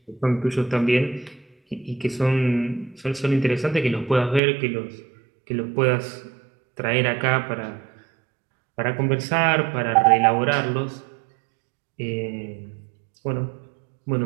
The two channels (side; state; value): left; drops out; at 4.4 s